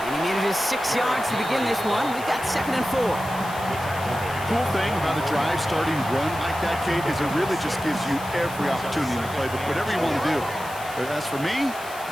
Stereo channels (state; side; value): noise; left; hiss, 16 dB below the sound